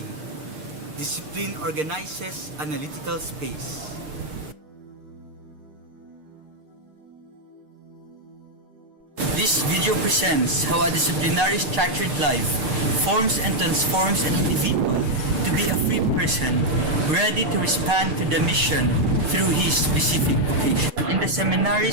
Discipline organizes analytical space. This video presents how a disciplinary structured life forms and transforms an individual to be a free person ready to respond to the mission through his specific vocation. In the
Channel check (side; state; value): left; late; 6.7 ms